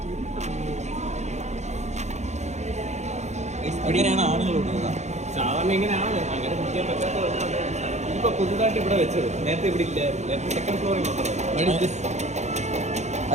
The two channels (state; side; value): late; left; 0.33 ms